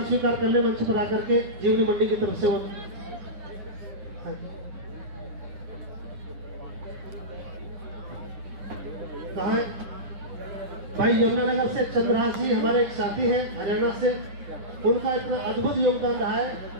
स्वीकार करने मंच पर आकर के जीवनी मंडी की तरफ से वो कहा है भाई यमुनानगर से चंद्रहास जी हमारे एक साथी हैं हरियाणा से, उनका इतना अद्भुत योगदान रहा है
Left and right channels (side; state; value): left; late; 9.8 ms